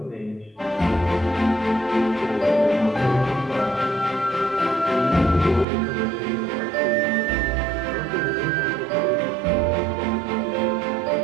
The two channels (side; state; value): left; drops out; at 5.7 s